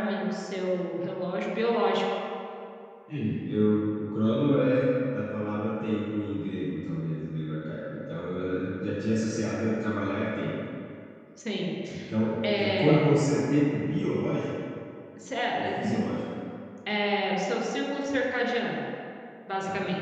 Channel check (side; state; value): both; identical; correlation 1.00